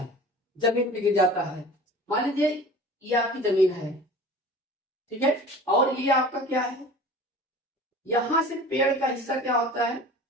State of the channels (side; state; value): both; normal; correlation 0.40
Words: जमीन पे गिर जाता है। मान लीजिए ये आपकी जमीन है, ठीक है, और ये आपका क्या है, यहां से पेड़ का हिस्सा क्या होता है,